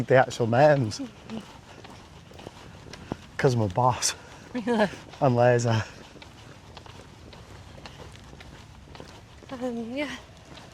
the actual names. Because I'm a boss. Really? I'm lazy. Yeah.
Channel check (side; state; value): both; identical; correlation 1.00